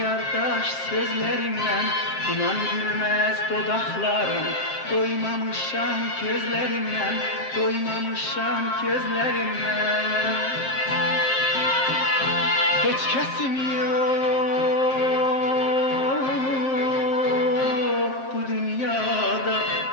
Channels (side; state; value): right; late; 7.6 ms